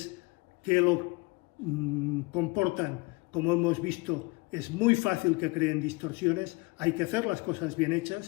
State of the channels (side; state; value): right; quieter; 26.3 dB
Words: que lo comportan, como hemos visto, es muy fácil que creen distorsiones. Hay que hacer las cosas bien